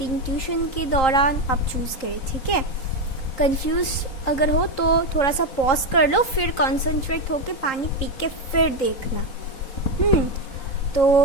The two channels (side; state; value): right; late; 3.8 ms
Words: ट्यूशन के दौरान आप चूज़ करें, ठीक है। कंफ्यूज अगर हो तो थोड़ा सा पॉज कर लो, फिर कॉन्सेंट्रेट होके पानी पी के फिर देखना। तो